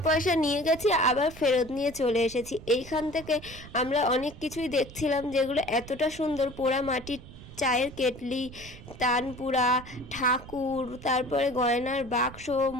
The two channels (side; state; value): right; noise; rumble, 16 dB below the sound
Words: পয়সা নিয়ে গেছি, আবার ফেরত নিয়ে চলে এসেছি। এইখান থেকে আমরা অনেক কিছুই দেখছিলাম যেগুলো এতটা সুন্দর, পোড়া মাটির চায়ের কেটলি, তানপুরা, ঠাকুর, তারপরে গয়নার বাক্স,